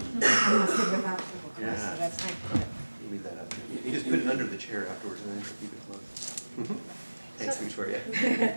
So that's my You leave that up. You just put it under the chair afterwards and then just keep it closed. Thanks, Victoria.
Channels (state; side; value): inverted; both; correlation -1.00